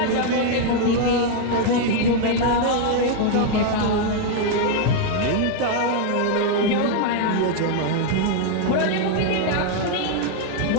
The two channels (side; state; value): both; different; correlation 0.00